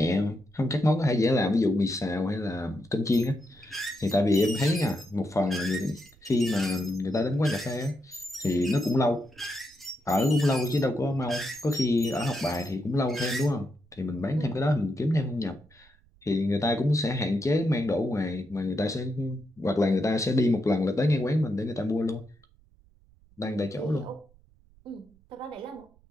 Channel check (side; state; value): right; noise; rumble, 30 dB below the sound